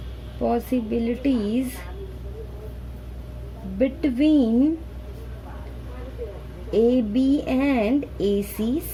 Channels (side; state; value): both; identical; correlation 1.00